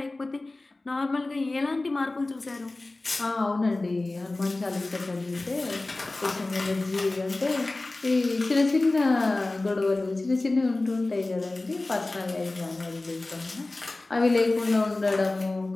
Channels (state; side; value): quieter; right; 3.0 dB